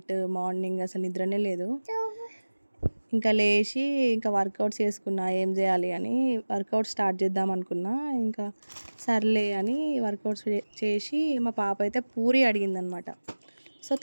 మార్నింగ్ అసలు నిద్రనే లేదు. ఇంకా లేచి ఇంకా వర్కౌట్స్ చేసుకున్నా, ఏం చేయాలి అని. వర్కౌట్ స్టార్ట్ చేద్దాం అనుకున్నా. ఇంకా సర్లే అని వర్కౌట్స్ చేసి మా పాప అయితే పూరి అడిగిందనమాట. సో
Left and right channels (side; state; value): both; inverted; correlation -1.00